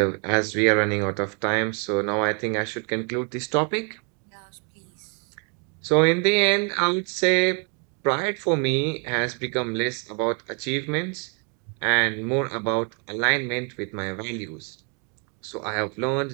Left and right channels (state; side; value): quieter; left; 37.4 dB